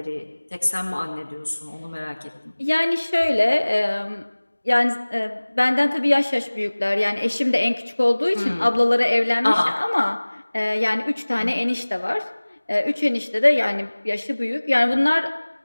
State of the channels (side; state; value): both; inverted; correlation -1.00